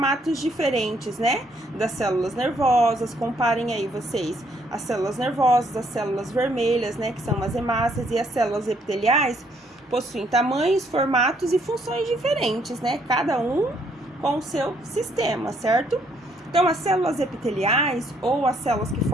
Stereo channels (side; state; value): both; normal; correlation 0.69